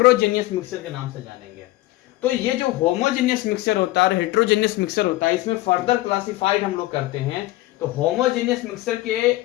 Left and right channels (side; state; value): right; quieter; 17.7 dB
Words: मिक्सचर के नाम से जानेंगे। तो ये जो होमोजेनियस मिक्सचर होता है और हेट्रोजेनियस मिक्सचर होता है, इसमें फर्दर क्लासिफाइड हम लोग करते हैं। तो होमोजेनियस मिक्सचर के